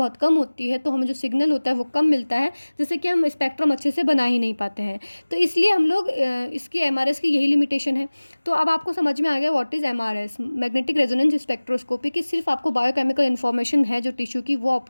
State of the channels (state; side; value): inverted; both; correlation -1.00